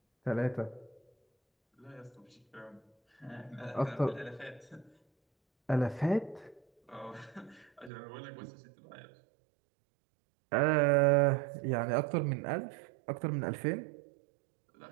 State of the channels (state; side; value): drops out; left; at 7.9 s